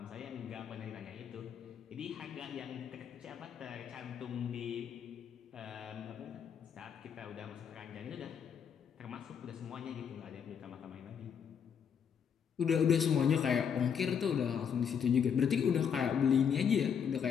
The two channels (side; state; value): right; quieter; 7.5 dB